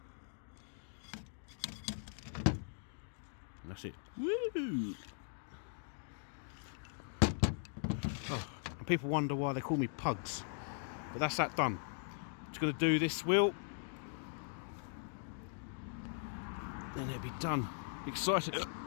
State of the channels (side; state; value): right; silent; digital silence